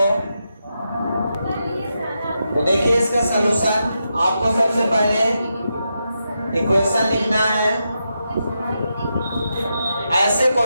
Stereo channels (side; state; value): both; inverted; correlation -0.86